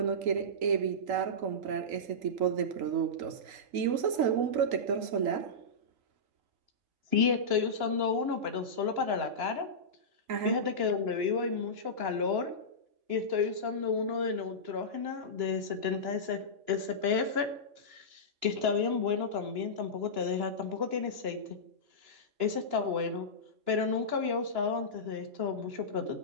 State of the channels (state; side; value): late; left; 2.9 ms